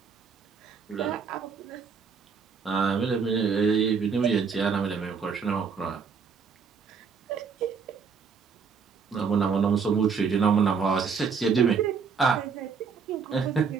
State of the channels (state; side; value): quieter; left; 5.8 dB